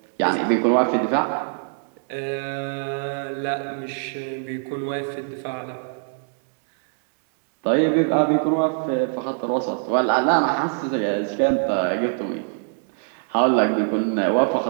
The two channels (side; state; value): left; silent; 63 dB below the other